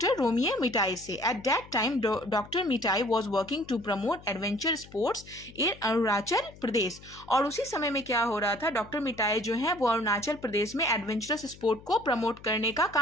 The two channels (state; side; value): noise; left; hum, 20 dB below the sound